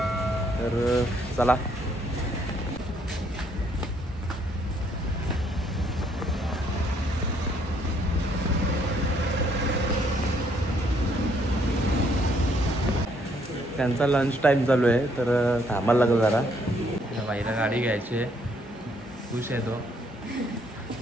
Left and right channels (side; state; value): both; normal; correlation 0.68